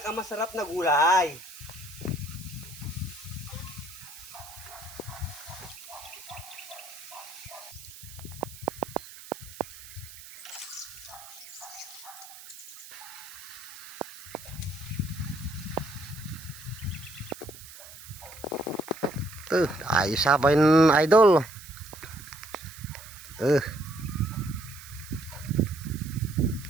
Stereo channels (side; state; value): right; noise; hiss, 16 dB below the sound